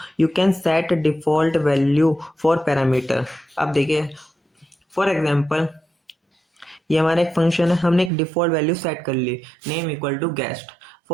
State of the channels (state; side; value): drops out; left; at 8.1 s